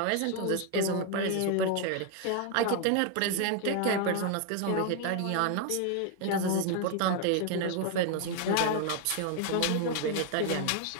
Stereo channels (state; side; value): different; both; correlation 0.00